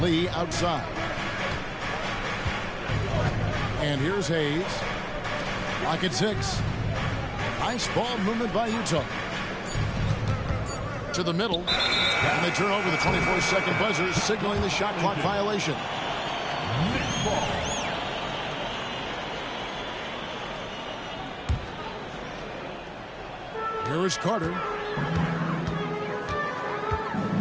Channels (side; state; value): both; identical; correlation 1.00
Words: Lee outside. And here's Hayes. Lock at 6. Nice ball movement by Utah. To the middle. And they turn over the 24-second buzzer, signaling the shot clock violation. Here is Carter.